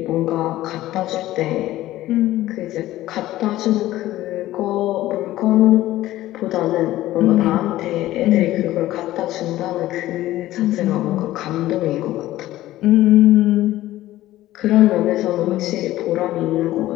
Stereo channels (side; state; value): right; quieter; 15.4 dB